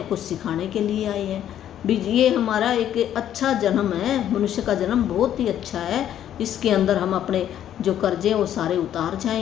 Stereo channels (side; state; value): right; quieter; 10.8 dB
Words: कुछ सिखाने के लिए आए हैं भी। ये हमारा एक अच्छा जन्म है, मनुष्य का जन्म बहुत ही अच्छा है। इसके अंदर हम अपने जो कर्जे वो सारे उतार